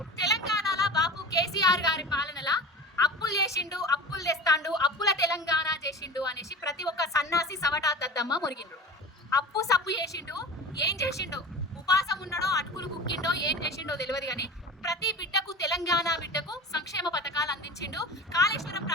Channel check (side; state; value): both; normal; correlation 0.34